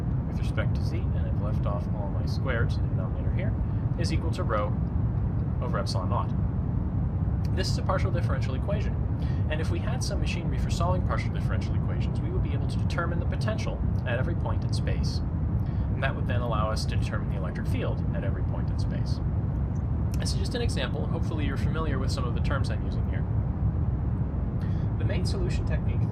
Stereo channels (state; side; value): identical; both; correlation 1.00